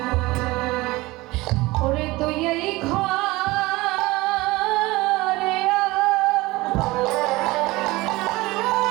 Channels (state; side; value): quieter; left; 20.7 dB